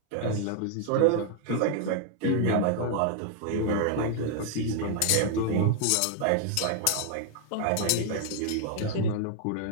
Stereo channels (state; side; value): different; both; correlation 0.00